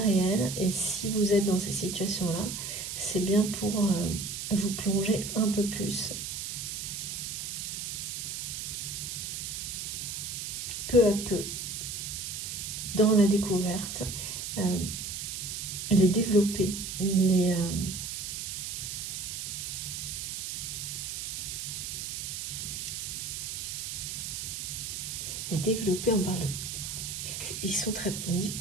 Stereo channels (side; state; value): right; noise; hiss, 5 dB below the sound